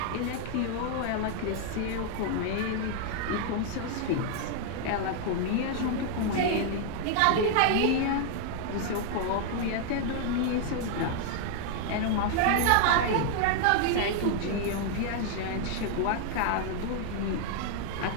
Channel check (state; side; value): different; both; correlation 0.00